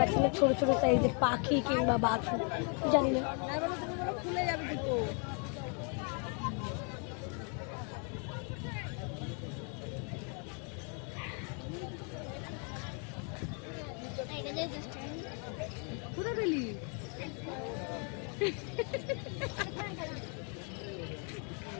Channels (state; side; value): quieter; right; 39.1 dB